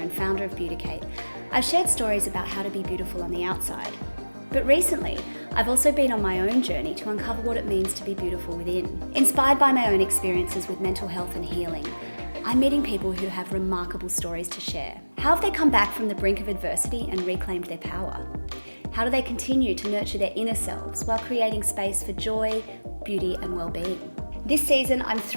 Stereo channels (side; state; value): both; inverted; correlation -1.00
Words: founder of Beauticate, I've shared stories about how to be beautiful on the outside. But recently, I've also been on my own journey to uncover what it means to be beautiful within. Inspired by my own experiences with mental health and healing, I'm meeting people who have remarkable stories to share. How have they come back from the brink of adversity and reclaimed their power? How do they continue to nurture their inner selves while creating space for joy, beauty and well-being? This season, I'm